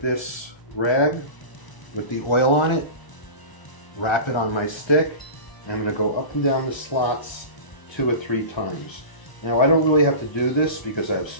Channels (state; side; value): late; right; 1.0 ms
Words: this rag with the oil on it, wrap it on my stick, and I'm going to go up and down the slots 2 or 3 times. Now I don't really have to do this because